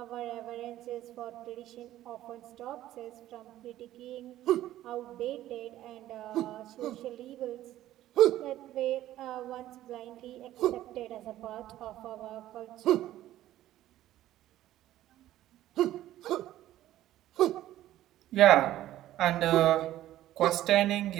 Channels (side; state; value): left; quieter; 13.8 dB